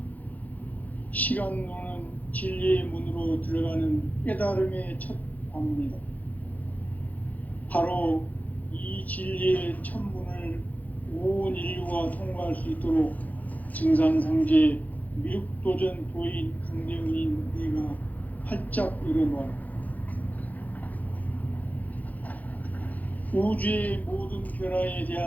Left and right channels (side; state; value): right; late; 0.079 ms